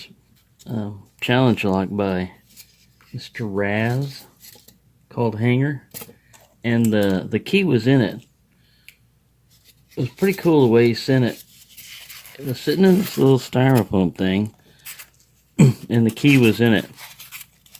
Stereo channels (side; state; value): both; identical; correlation 1.00